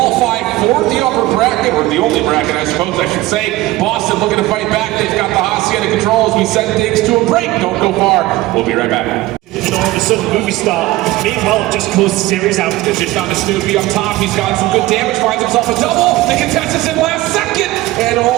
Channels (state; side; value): quieter; left; 17.7 dB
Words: for the upper bracket, or the only bracket, I suppose I should say. Boston looking to fight back. They've got the Hacienda controls. We send things to a break. Don't go far. We'll be right back. and all of a sudden movie star. Meanwhile, just closed the series out. It's just on to Snoopy up top. He's got some good damage, finds himself a double. The contest is in last second. And